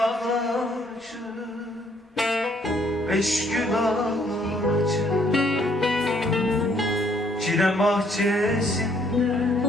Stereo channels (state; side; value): normal; both; correlation 0.66